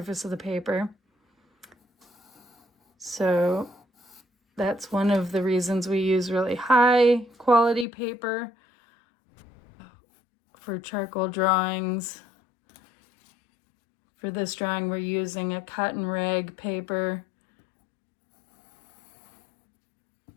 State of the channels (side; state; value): right; drops out; at 7.9 s